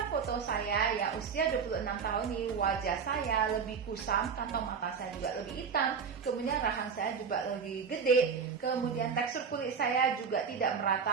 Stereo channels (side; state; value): left; quieter; 6.1 dB